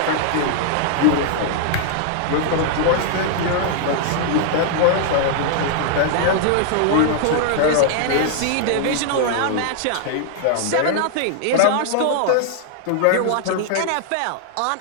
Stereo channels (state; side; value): different; both; correlation -0.01